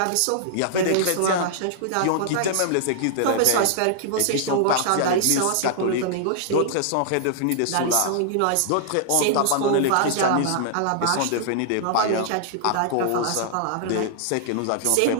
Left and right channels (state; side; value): different; both; correlation -0.01